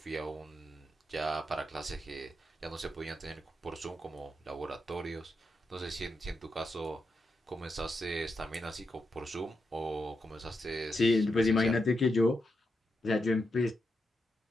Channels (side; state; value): both; normal; correlation 0.85